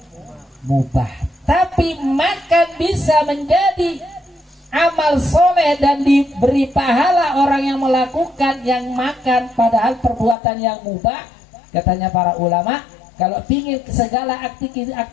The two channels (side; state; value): right; drops out; at 10.4 s